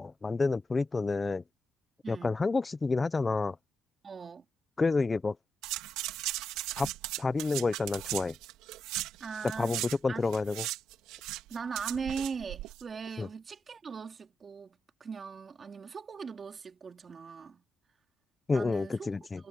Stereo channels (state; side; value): normal; both; correlation 0.87